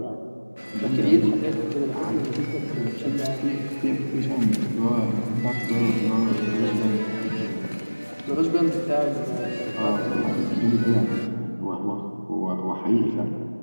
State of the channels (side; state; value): both; inverted; correlation -1.00